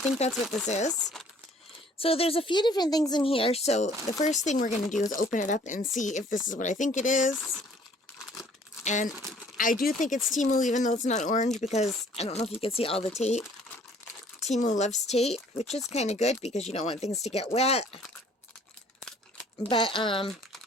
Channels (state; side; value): normal; both; correlation 0.57